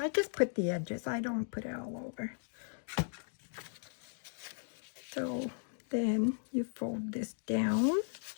I just put the edges. I don't put it all over. So then you fold this down.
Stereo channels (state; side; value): silent; right; digital silence